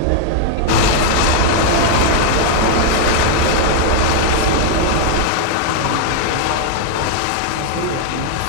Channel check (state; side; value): different; both; correlation 0.00